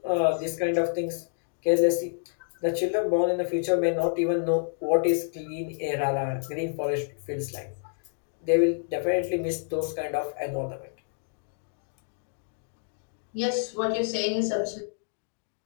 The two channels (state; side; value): silent; right; digital silence